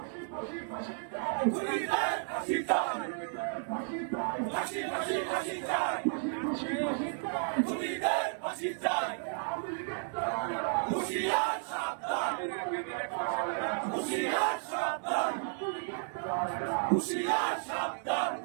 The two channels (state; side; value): silent; left; digital silence